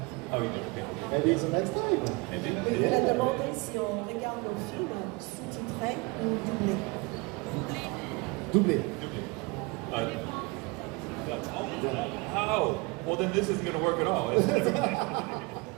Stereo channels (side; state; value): left; quieter; 27.0 dB